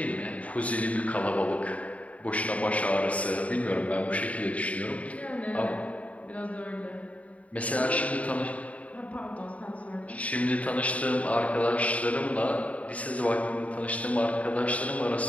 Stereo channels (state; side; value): late; right; 0.067 ms